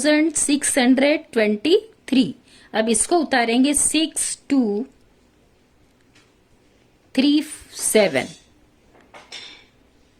अब इसको उतारेंगे 6237,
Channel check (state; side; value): identical; both; correlation 1.00